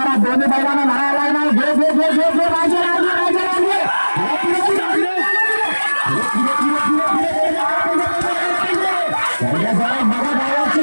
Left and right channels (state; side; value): inverted; both; correlation -1.00